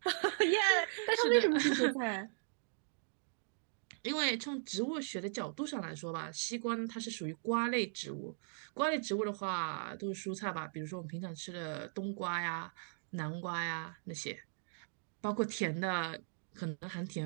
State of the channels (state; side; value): silent; left; digital silence